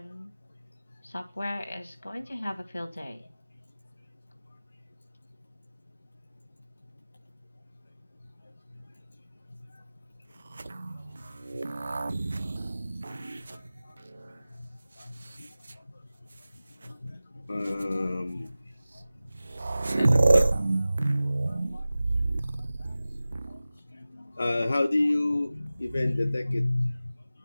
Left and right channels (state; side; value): inverted; both; correlation -0.96